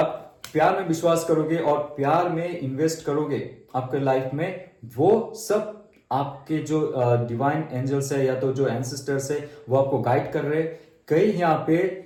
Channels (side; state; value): both; identical; correlation 1.00